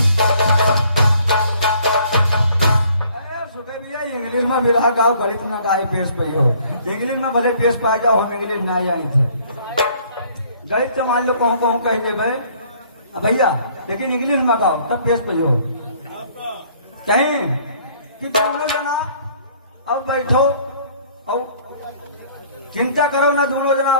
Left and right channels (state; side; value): inverted; both; correlation -0.58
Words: इंग्लिश में विरह गाओ, गणित में गाय पेश पई हो। इंग्लिश में भले पेश पा जाओ, हम इंग्लिश ना जानी थे। गणित तो मान लो कहूँ कहूँ कहेंगे भाई भैया, लेकिन इंग्लिश में गाओ तब पेश पई हो। कहीं कि दोनों जना अब बैठो और चिंता करो ना, दोनों जना